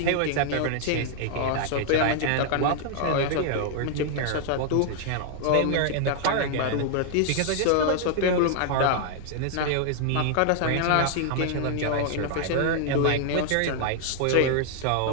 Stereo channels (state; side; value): different; both; correlation 0.00